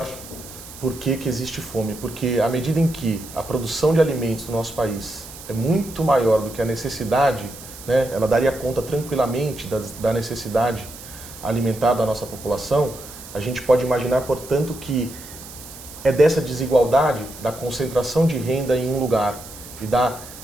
por que existe fome. Porque à medida em que a produção de alimentos no nosso país é muito maior do que a necessidade, né, ela daria conta tranquilamente da necessidade alimentar da nossa população, a gente pode imaginar, portanto, que é dessa desigualdade, da concentração de renda em um lugar e da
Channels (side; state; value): right; noise; hiss, 15 dB below the sound